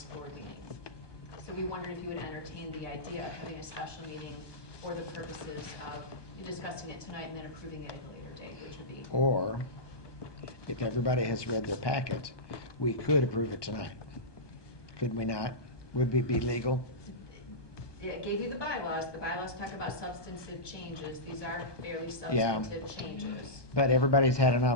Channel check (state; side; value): late; right; 1.2 ms